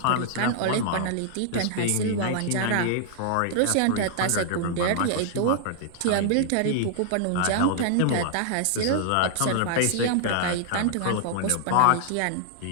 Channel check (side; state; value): both; different; correlation -0.01